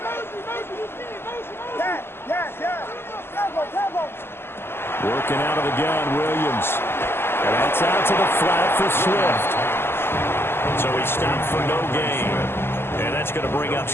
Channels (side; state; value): right; late; 0.12 ms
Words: Working out of the gun, Williams. And that's out to the flat for Swift. So he stopped for no gain. And that's going to bring up